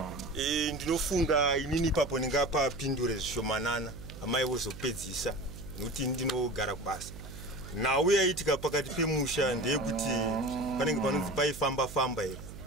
Ndinofunga inini ipapo ndingapapindure zvishomanana amai vozopedzisa nokuti ndinogara kubasa. Nhau yaitika pakati pemusha ndeyekuti panenge panonzi paifamba here.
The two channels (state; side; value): noise; right; hum, 13 dB below the sound